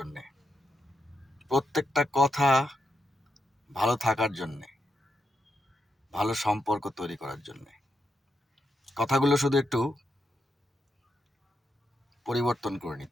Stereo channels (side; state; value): both; normal; correlation 0.83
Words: প্রত্যেকটা কথা ভালো থাকার জন্যে, ভালো সম্পর্ক তৈরি করার জন্যে। কথাগুলো শুধু একটু পরিবর্তন করে